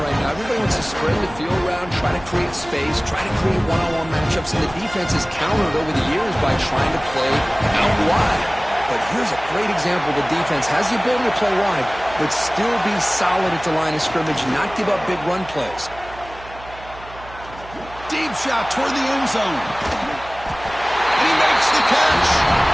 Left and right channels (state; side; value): noise; right; hum, 18 dB below the sound